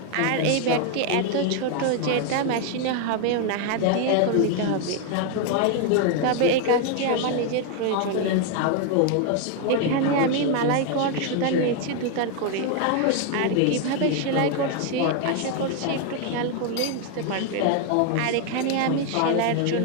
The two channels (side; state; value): both; different; correlation 0.01